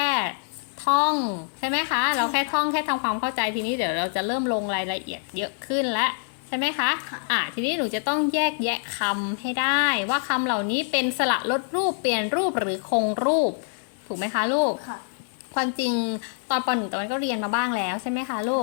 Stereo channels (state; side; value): silent; right; 61 dB below the other